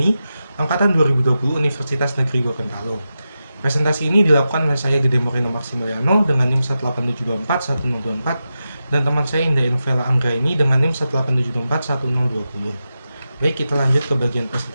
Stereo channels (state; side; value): inverted; both; correlation -0.91